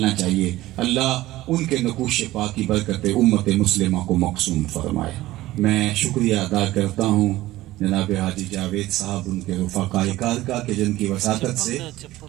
چاہیے۔ اللہ ان کے نقوش پاک کی برکت امت مسلمہ کو مقسوم فرمائے۔ میں شکریہ ادا کرتا ہوں جناب حاجی جاوید صاحب، ان کے رفقائے کار کا، کہ جن کی وساطت سے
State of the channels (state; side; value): quieter; left; 16.7 dB